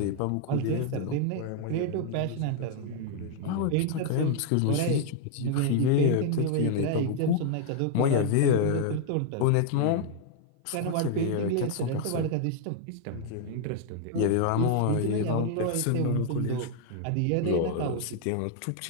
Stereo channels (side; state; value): both; different; correlation 0.00